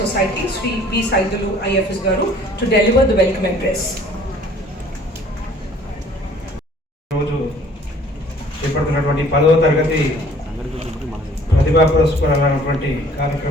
Society, Sri B. Saidulu IFS Garu, to deliver the welcome address. రోజు చేపడుతున్నటువంటి 10వ తరగతి ప్రతిభా పురస్కారాలైనటువంటి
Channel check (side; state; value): both; normal; correlation 0.54